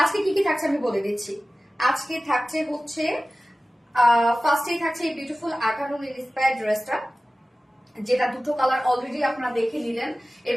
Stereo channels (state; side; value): normal; both; correlation 0.96